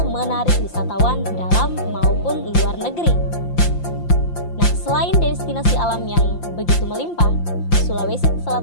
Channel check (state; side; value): late; right; 5.8 ms